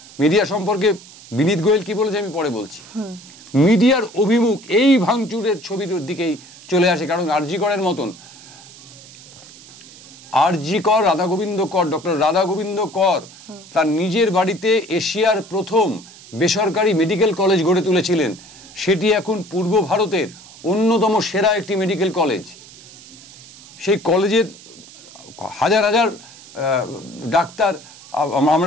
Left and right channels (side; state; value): right; noise; hiss, 20 dB below the sound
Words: মিডিয়া সম্পর্কে বিনীত গোয়েল কি বলেছে আমি পরে বলছি, মিডিয়ার অভিমুখ এই ভাঙচুরের ছবির দিকেই চলে আসে। কারণ আরজি করের মতন, আরজি কর ডক্টর রাধা গোবিন্দ কর তার নিজের বাড়িতে এশিয়ার প্রথম বেসরকারি মেডিকেল কলেজ গড়ে তুলেছিলেন। সেটি এখন পূর্ব ভারতের অন্যতম সেরা একটি মেডিকেল কলেজ। সেই কলেজের হাজার হাজার ডাক্তার